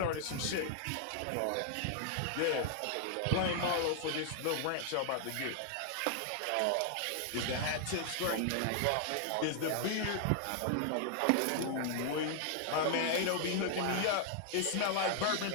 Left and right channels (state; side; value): different; both; correlation 0.00